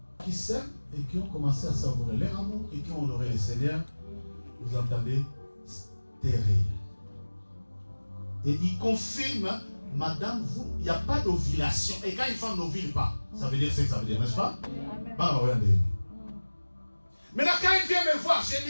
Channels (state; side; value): inverted; both; correlation -1.00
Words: qui s'aiment et qui ont commencé à savourer leur amour et qui ont honoré le Seigneur, vous entendez, stérile. Et il confirme, madame, il n'y a pas d'ovulation. Et quand une femme n'ovule pas, ça veut dire ce que ça veut dire, n'est-ce pas? Bah, regardez. Maintenant, quand il vient me voir, j'ai